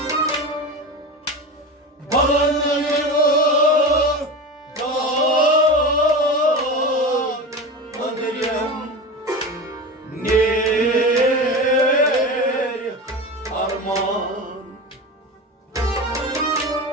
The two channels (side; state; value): both; normal; correlation 0.27